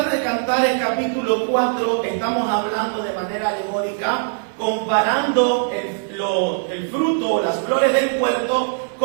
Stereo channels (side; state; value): left; silent; 65 dB below the other